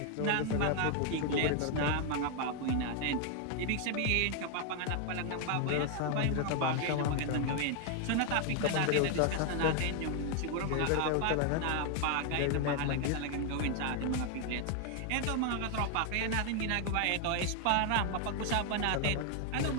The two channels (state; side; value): different; both; correlation 0.00